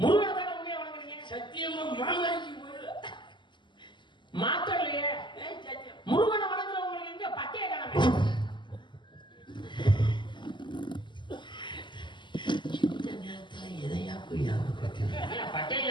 முருகனை தானே உண்மையா வணங்குறீங்க? சத்தியமா மாமாஜி மாத்தலையே. முருகனை வணங்குறவங்களுக்கு எங்க பட்டைய காணமே? இந்த நேரத்துல எதையா போய் பட்டைய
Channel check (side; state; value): right; late; 0.22 ms